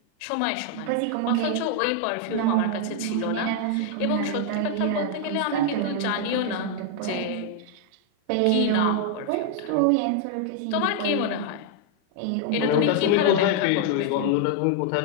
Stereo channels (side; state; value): both; different; correlation 0.00